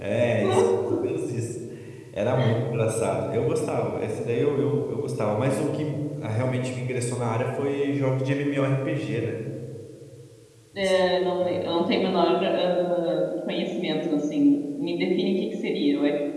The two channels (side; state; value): both; identical; correlation 1.00